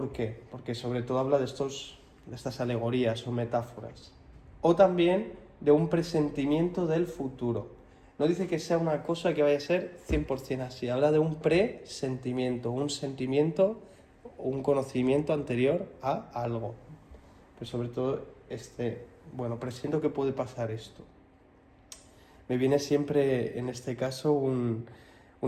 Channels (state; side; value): identical; both; correlation 1.00